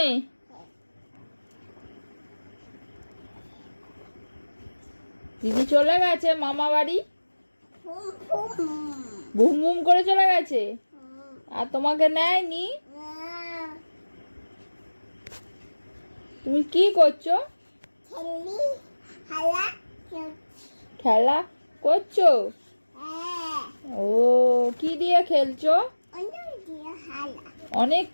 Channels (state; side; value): inverted; both; correlation -1.00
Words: দিদি চলে গেছে মামা বাড়ি, বুম বুম করে চলে গেছে। আর তোমাকে নেয়নি? তুমি কি করছো? খেলা করছো? ও, কি দিয়ে খেলছো? অনেক